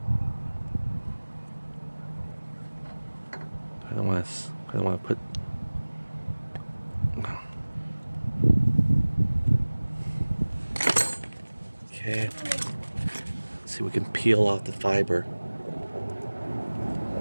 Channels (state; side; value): inverted; both; correlation -1.00